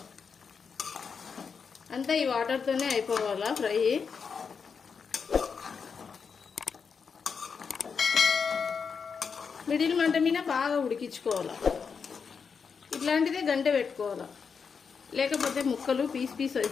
అంతా ఈ వాటర్తోనే అయిపోవాలా ఫ్రై. మిడిల్ మంట మీద బాగా ఉడికించుకోవాలా. ఇట్లాంటిదే గంట పెట్టుకోవాలా, లేకపోతే ముక్కలు పీస్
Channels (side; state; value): right; quieter; 5.9 dB